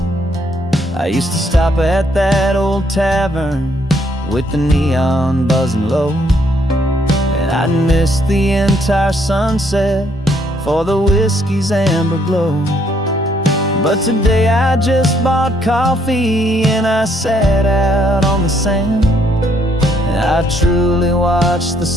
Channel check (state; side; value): normal; both; correlation 0.69